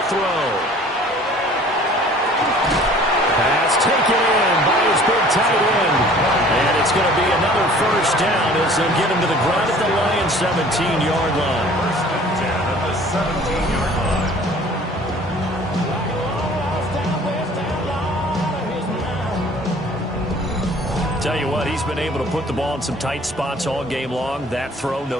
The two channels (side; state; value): both; normal; correlation 0.50